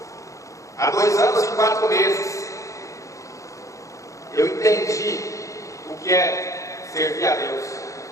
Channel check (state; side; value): late; right; 0.15 ms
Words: há 2 anos e 4 meses, eu entendi o que é servir a Deus.